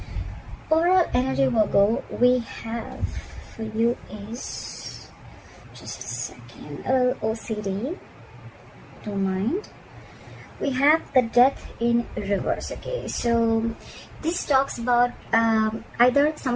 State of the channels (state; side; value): identical; both; correlation 1.00